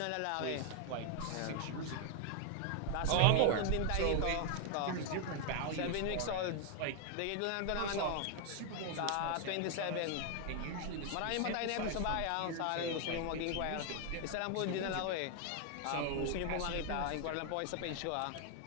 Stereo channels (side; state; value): both; different; correlation 0.00